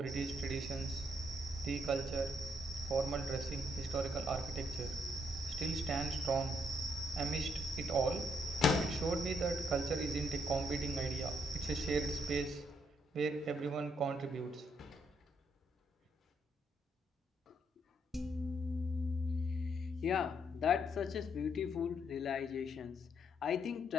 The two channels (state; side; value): normal; both; correlation 0.73